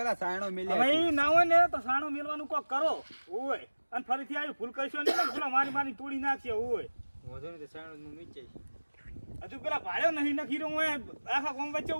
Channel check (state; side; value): inverted; both; correlation -1.00